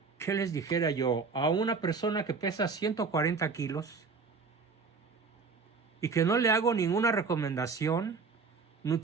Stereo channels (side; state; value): left; quieter; 4.9 dB